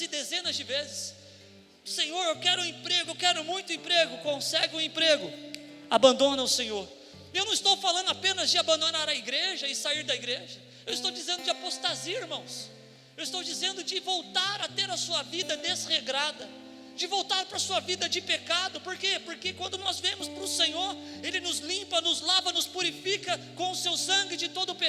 dezenas de vezes. Senhor, eu quero um emprego, eu quero muito emprego. Consegue um emprego, abandona o Senhor. Eu não estou falando apenas de abandonar a igreja e sair da igreja. Eu estou dizendo de apostasia, irmãos. Eu estou dizendo de voltar a ter a sua vida desregrada, de voltar para a sua vida de pecado. Por quê? Porque quando nós vemos para o Senhor, Ele nos limpa, nos lava, nos purifica com o seu sangue de todo o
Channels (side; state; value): both; identical; correlation 1.00